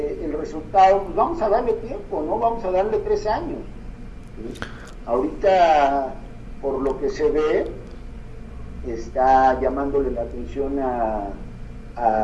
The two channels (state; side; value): identical; both; correlation 1.00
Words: resultado, pues vamos a darle tiempo, ¿no? Vamos a darle 3 años. ¿Sí? Ahorita, por lo que se ve, está llamándole la atención a